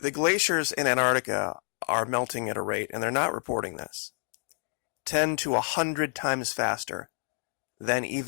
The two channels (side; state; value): right; silent; 59 dB below the other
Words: glaciers in Antarctica are melting at a rate, and they're not reporting this, 10 to 100 times faster than